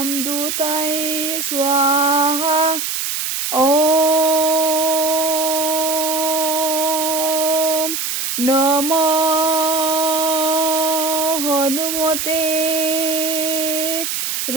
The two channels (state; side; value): noise; right; hiss, 2 dB below the sound